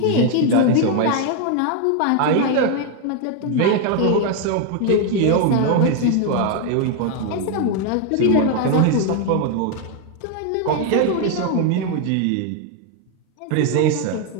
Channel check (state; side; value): different; both; correlation 0.01